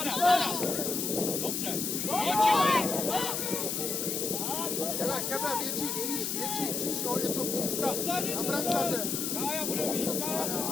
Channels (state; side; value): noise; left; hiss, 1 dB below the sound